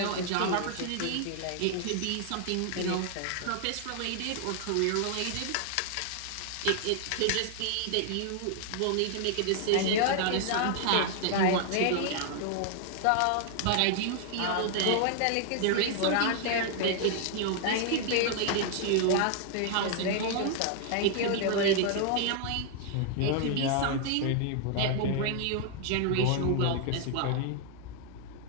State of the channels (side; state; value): both; different; correlation 0.00